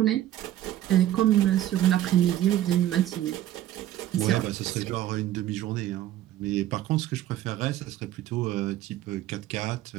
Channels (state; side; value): quieter; left; 13.0 dB